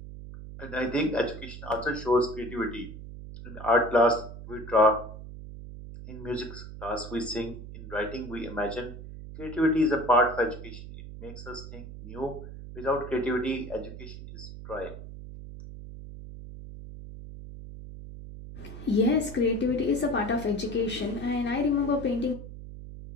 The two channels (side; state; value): right; noise; hum, 12 dB below the sound